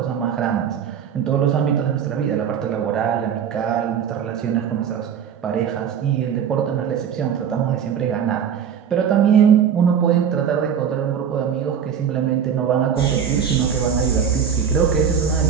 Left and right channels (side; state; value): left; quieter; 7.9 dB